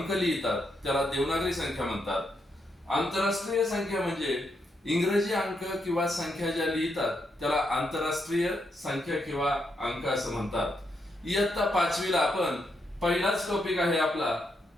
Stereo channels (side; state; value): both; normal; correlation 0.80